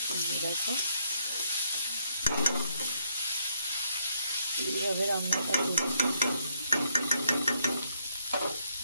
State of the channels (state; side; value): inverted; both; correlation -0.72